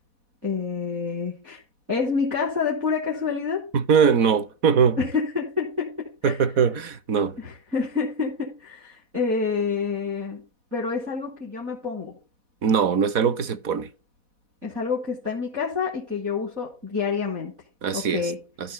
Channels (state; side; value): late; left; 4.1 ms